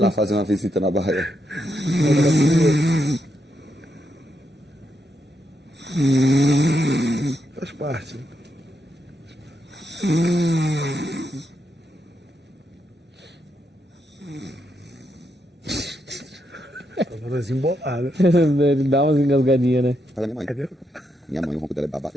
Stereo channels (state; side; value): normal; both; correlation 0.81